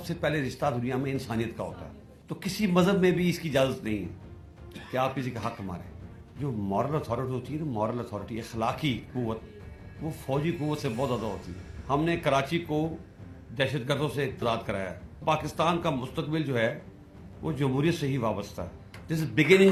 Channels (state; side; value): identical; both; correlation 1.00